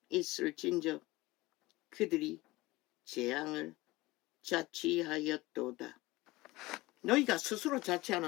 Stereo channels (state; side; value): quieter; right; 20.2 dB